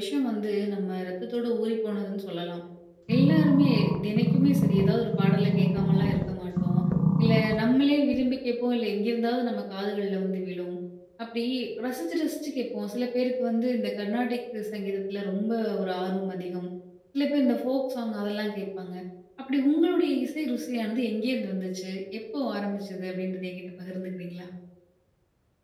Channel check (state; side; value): identical; both; correlation 1.00